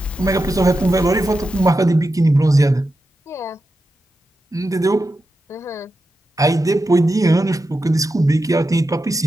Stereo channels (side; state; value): both; normal; correlation 0.89